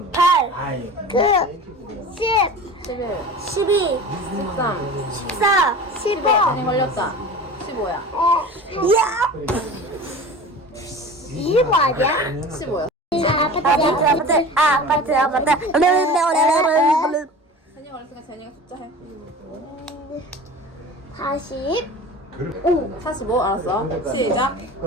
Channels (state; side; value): normal; both; correlation 0.37